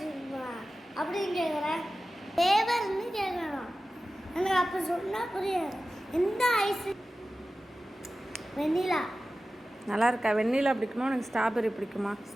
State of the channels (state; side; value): normal; both; correlation 0.95